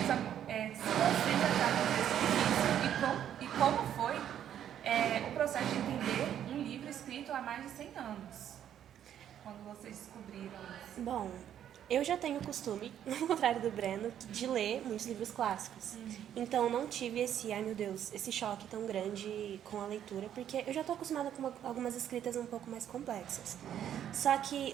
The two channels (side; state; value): left; quieter; 10.1 dB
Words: se você já está no texto e como foi o processo de entender um livro escrito há mais de 100 anos, quando vocês descobriram isso? Bom, eu já tenho o costume, ao contrário do Breno, de ler muitos livros clássicos. Então, não tive esse choque tão grande com a leitura, porque eu já estou acostumada com algumas escritas um pouco mais complexas. Só que